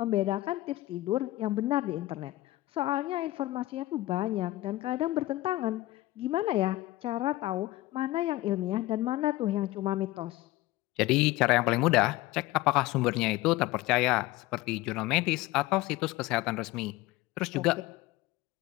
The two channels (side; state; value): right; quieter; 17.6 dB